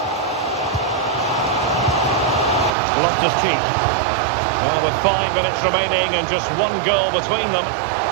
Loftus-Cheek. Well, with 5 minutes remaining and just one goal between them,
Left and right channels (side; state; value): left; drops out; at 2.7 s